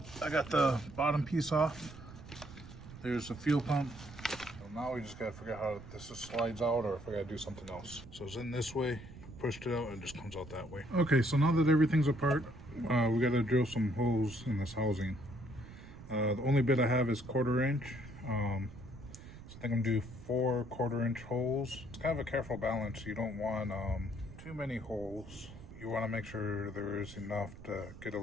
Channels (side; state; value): right; noise; rumble, 15 dB below the sound